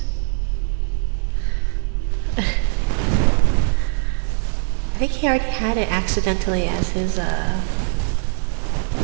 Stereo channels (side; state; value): left; silent; digital silence